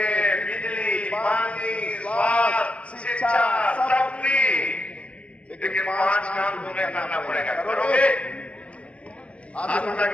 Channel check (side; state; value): right; late; 0.061 ms